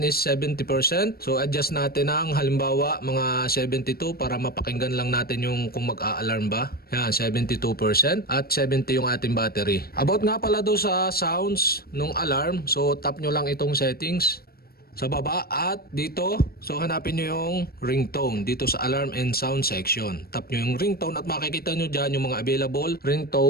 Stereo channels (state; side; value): late; right; 0.44 ms